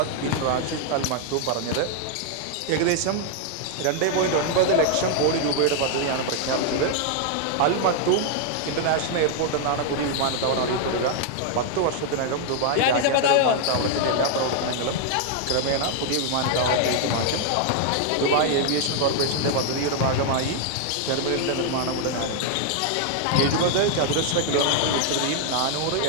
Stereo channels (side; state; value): both; different; correlation 0.00